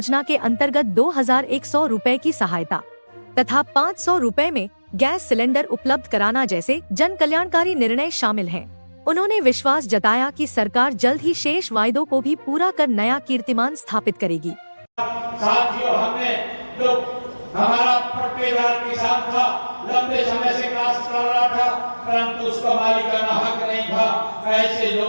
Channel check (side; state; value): both; inverted; correlation -1.00